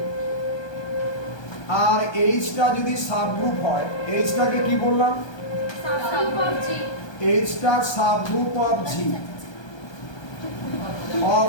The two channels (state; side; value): late; right; 1.2 ms